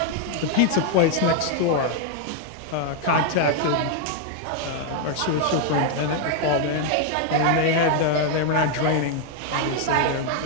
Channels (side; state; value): both; different; correlation 0.00